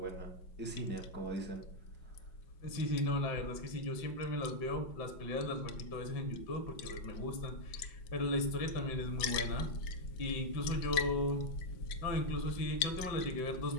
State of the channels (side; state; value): right; late; 5.5 ms